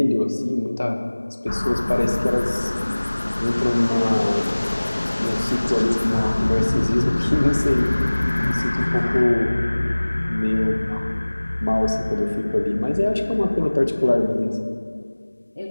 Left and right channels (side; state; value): both; inverted; correlation -1.00